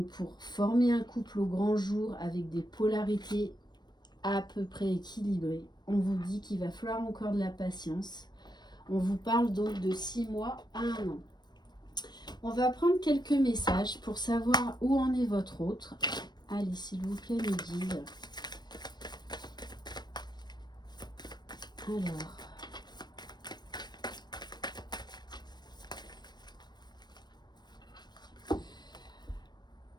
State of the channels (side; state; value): right; late; 0.21 ms